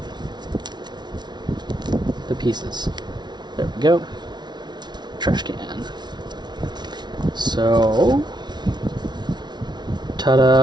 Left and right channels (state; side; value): late; left; 0.20 ms